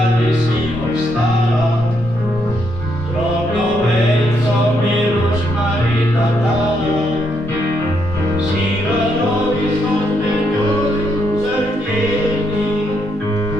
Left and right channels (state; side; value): normal; both; correlation 0.76